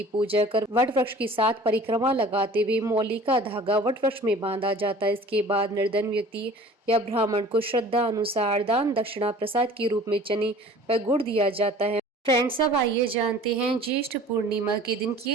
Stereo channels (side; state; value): both; normal; correlation 0.46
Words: पूजा कर वट वृक्ष की 7 परिक्रमा लगाते हुए मौली का धागा वट वृक्ष में बांधा जाता है। इसके बाद निर्धन व्यक्ति या ब्राह्मण को श्रद्धा अनुसार दान दक्षिणा प्रसाद के रूप में चने व गुड़ दिया जाता है। फ्रेंड्स, अब आइए जानते हैं ज्येष्ठ पूर्णिमा के दिन